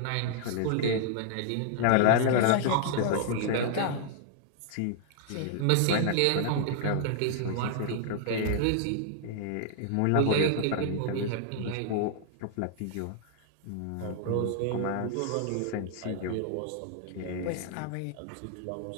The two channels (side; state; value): both; different; correlation -0.01